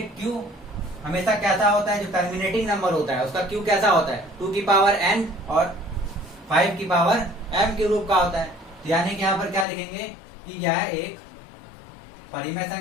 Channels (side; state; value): right; drops out; at 9.7 s